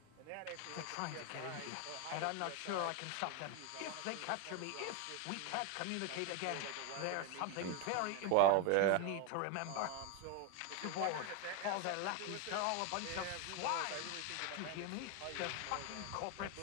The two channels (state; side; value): different; both; correlation 0.01